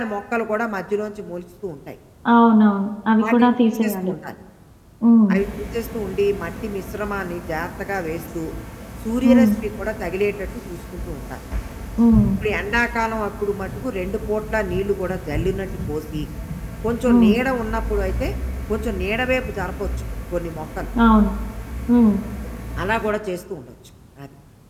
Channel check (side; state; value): both; identical; correlation 1.00